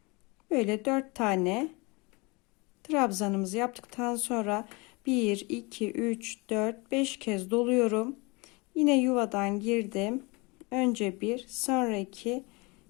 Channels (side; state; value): right; quieter; 27.1 dB